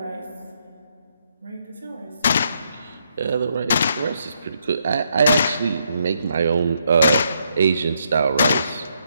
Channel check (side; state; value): both; inverted; correlation -0.76